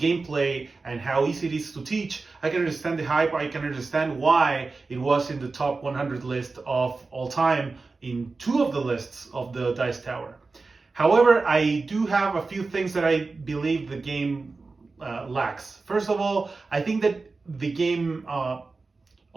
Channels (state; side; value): quieter; left; 3.9 dB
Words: and how easy it is to teach, I can understand the hype. I can understand why it was in the top 100 list of all time in 2 of the lists of the Dice Tower. However, I do have a few things that I believe the game lacks. First of all, I think that the game,